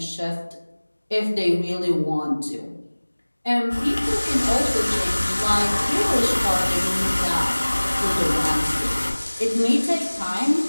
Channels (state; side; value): inverted; both; correlation -1.00